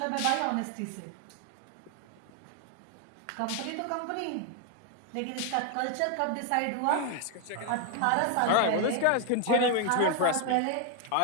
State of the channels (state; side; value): different; both; correlation 0.01